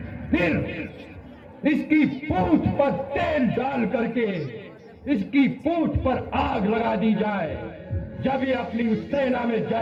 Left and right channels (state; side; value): identical; both; correlation 1.00